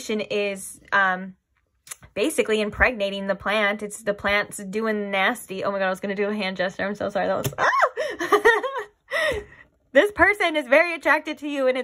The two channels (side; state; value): both; identical; correlation 1.00